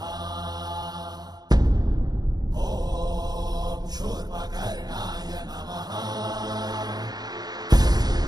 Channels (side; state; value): left; late; 0.19 ms